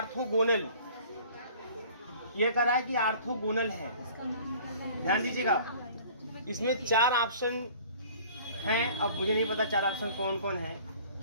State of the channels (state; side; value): inverted; both; correlation -0.49